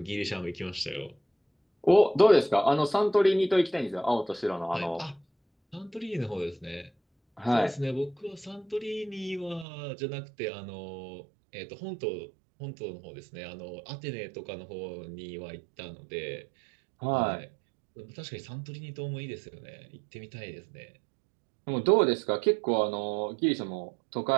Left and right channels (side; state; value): left; drops out; at 9.7 s